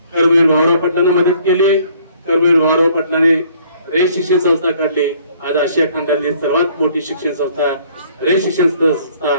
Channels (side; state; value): both; inverted; correlation -0.60